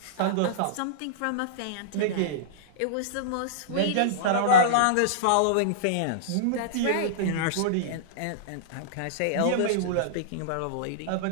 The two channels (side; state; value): both; different; correlation -0.03